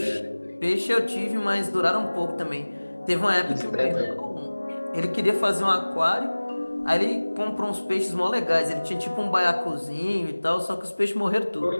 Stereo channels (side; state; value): both; inverted; correlation -1.00